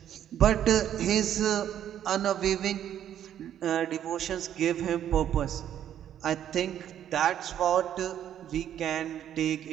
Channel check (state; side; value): quieter; left; 10.4 dB